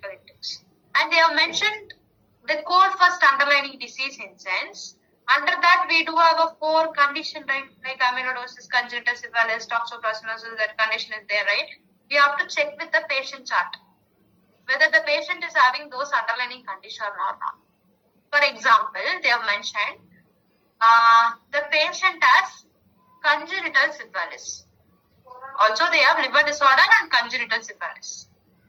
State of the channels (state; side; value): identical; both; correlation 1.00